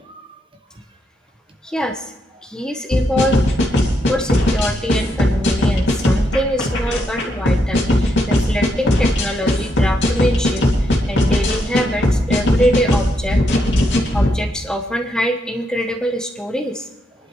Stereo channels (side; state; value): both; normal; correlation 0.79